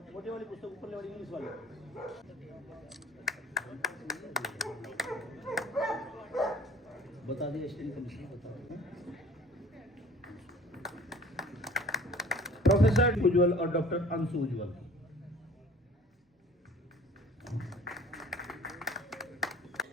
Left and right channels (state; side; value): normal; both; correlation 0.49